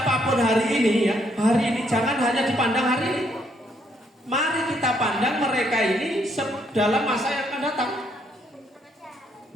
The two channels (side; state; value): both; normal; correlation 0.72